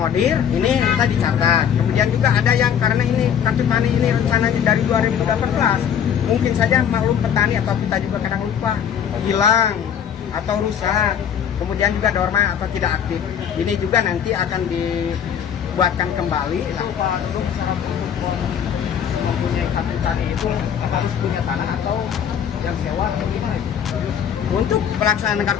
ini kita dicatat. Kemudian juga ada yang karena ini kartu tani ini rencananya dari 2018, mungkin saja maklum petani atau kita juga kadang lupa, hilang atau rusak. Kemudian juga normal atau tidak aktif. Ini juga nanti akan dibuatkan kembali. Cara untuk mempunyai kartu tani itu harus punya tanah atau yang sewa atau gimana? Untuk pelaksanaan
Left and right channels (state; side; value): quieter; right; 8.5 dB